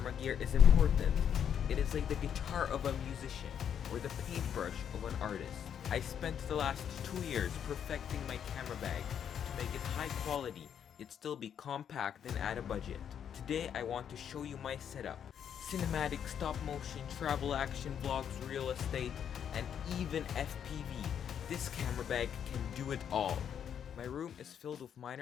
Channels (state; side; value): quieter; right; 8.6 dB